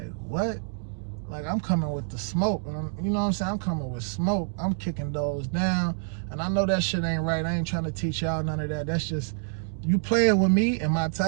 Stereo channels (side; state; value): left; silent; digital silence